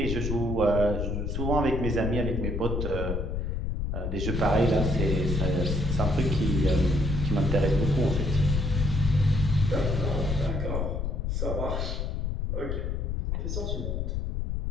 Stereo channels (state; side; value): noise; left; rumble, 1 dB below the sound